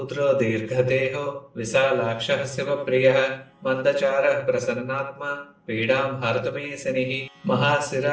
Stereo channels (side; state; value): both; identical; correlation 1.00